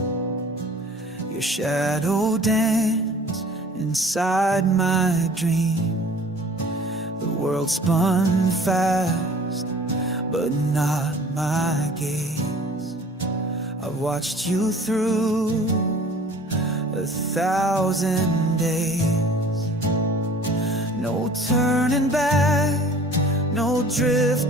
your shadow danced inside my dream. The world spun fast, but not my gaze. I've watched you through 1,000 days. No turning back, no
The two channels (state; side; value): normal; both; correlation 0.48